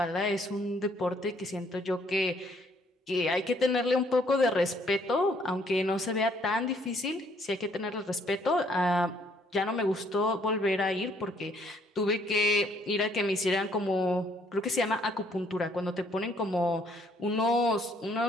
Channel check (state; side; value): normal; both; correlation 0.66